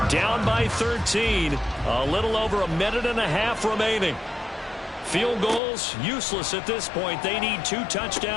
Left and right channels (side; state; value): right; drops out; at 5.6 s